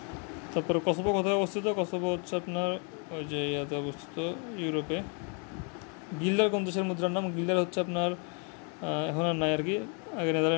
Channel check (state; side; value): quieter; right; 37.7 dB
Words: তারপরে কসোভো কোথায় অবস্থিত? কসোভো হচ্ছে আপনার ওই যে ইয়াতে অবস্থিত, ইউরোপে। গিল্ডার কোন দেশের মুদ্রার নাম? গিল্ডার হচ্ছে আপনার এখন আর নাই আর কি, আগে